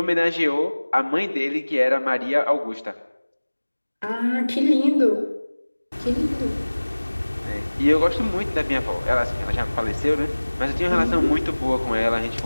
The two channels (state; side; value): inverted; both; correlation -1.00